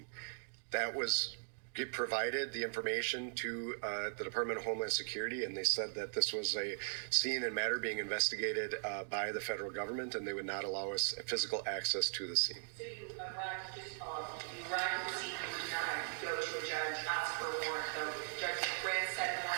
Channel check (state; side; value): silent; left; digital silence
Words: That was provided the information to the Department of Homeland Security, and they said that this was a scene and matter being investigated by the federal government, and they would not allow us physical access to the scene. So you arrived at the scene, you were denied, you go to a judge, ask for a warrant, the judge grants said